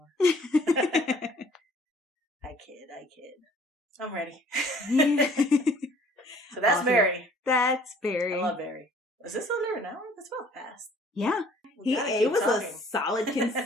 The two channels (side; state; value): both; normal; correlation 0.55